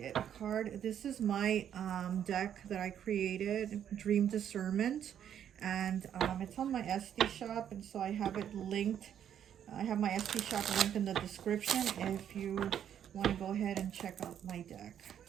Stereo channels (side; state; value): left; quieter; 9.5 dB